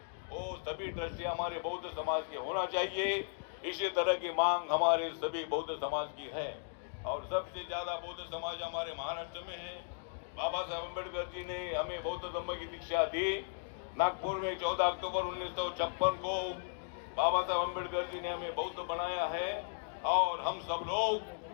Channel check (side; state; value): right; silent; digital silence